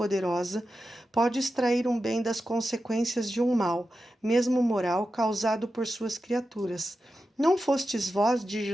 pode extrair um bem das consequências de um mal, mesmo moral, causado por suas criaturas. Não fostes vós, diz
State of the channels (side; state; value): both; normal; correlation 0.91